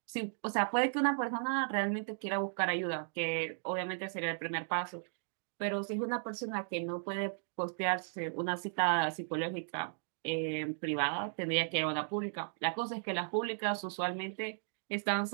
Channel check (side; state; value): left; silent; digital silence